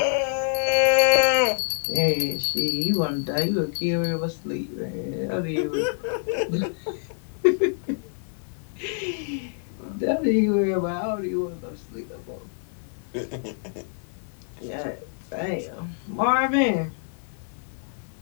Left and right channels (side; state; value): right; silent; 61 dB below the other